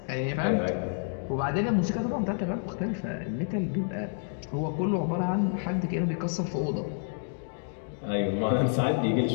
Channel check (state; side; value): silent; right; digital silence